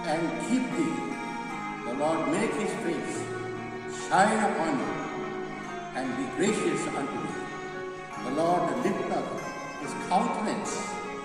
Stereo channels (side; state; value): both; identical; correlation 1.00